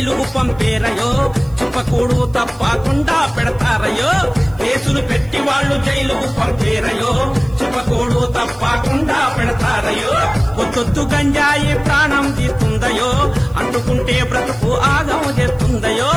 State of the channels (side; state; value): right; noise; hiss, 29 dB below the sound